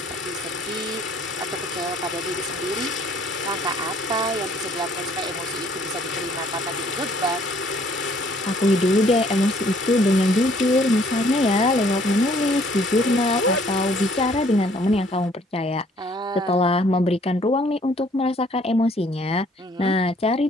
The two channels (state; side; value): normal; both; correlation 0.61